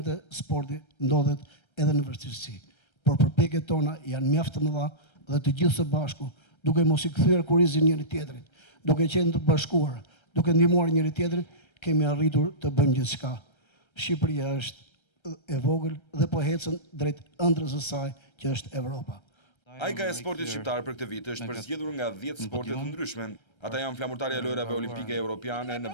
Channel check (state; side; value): late; right; 1.3 ms